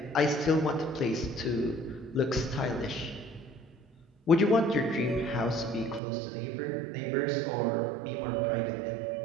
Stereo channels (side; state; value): left; drops out; at 6.0 s